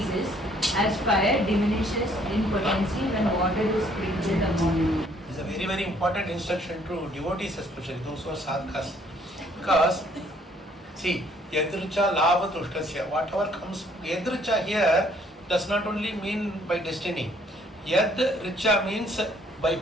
as fire diminishes in potency when water is sprinkled upon it. This is a very, very important instruction to devotees, especially those who are sadhakas. Because, see, yadricha labha tushtasya, whatever comes, yadricha here does not only mean by destiny. Yad Richa means by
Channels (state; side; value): normal; both; correlation 0.63